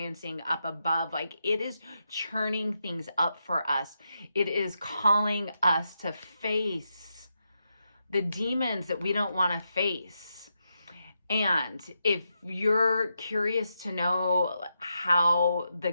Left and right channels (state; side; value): inverted; both; correlation -0.85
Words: up above, like it is churning things up for us. It is calling us to face the demons that we don't want to face. And if you're curious to know how the